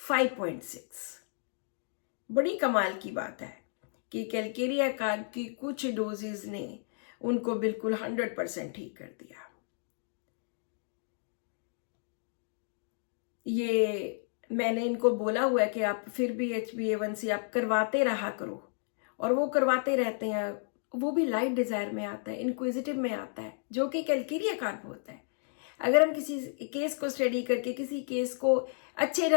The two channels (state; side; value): silent; right; digital silence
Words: बड़ी कमाल की बात है कि कैलकेरिया काप की कुछ डोजेज ने उनको बिल्कुल 100% ठीक कर दिया। ये मैंने इनको बोला हुआ है कि आप फिर भी HbA1c आप करवाते रहा करो, और वो करवाते रहते हैं। वो भी लाइट डिजायर में आता है, इंक्विजिटिव में आता है, जो कि कैलकेरिया काप होता है। अगर हम किसी केस को स्टडी करके, किसी केस को अच्छे